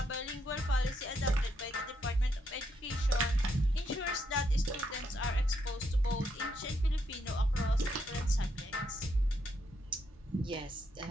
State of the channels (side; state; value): both; normal; correlation 0.77